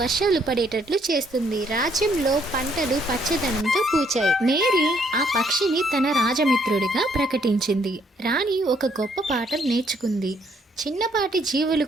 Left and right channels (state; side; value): normal; both; correlation 0.68